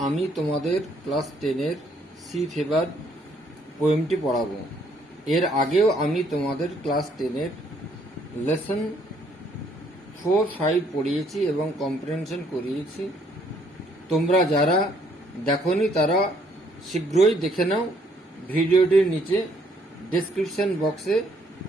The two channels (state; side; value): normal; both; correlation 0.67